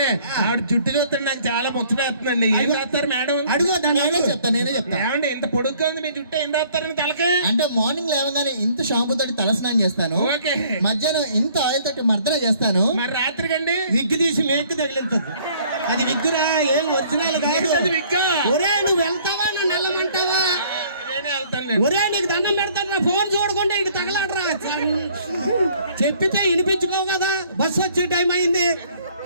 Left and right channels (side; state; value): both; inverted; correlation -0.58